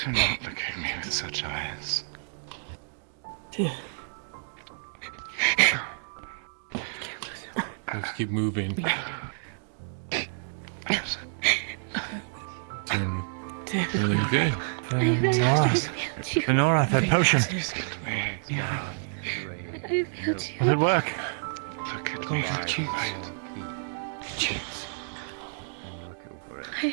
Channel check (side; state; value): left; silent; digital silence